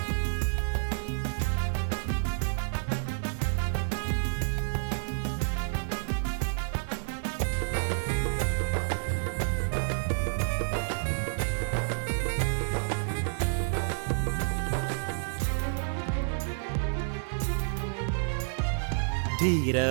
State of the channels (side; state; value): left; silent; 58 dB below the other